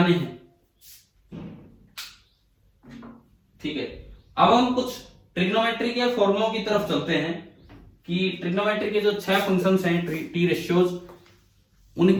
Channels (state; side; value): identical; both; correlation 1.00